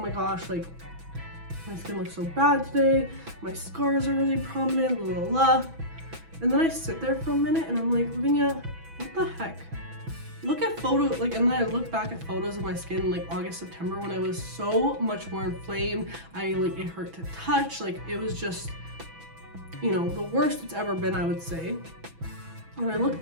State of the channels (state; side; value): late; left; 6.1 ms